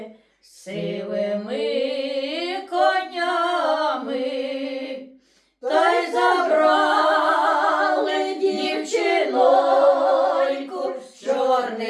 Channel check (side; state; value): both; identical; correlation 1.00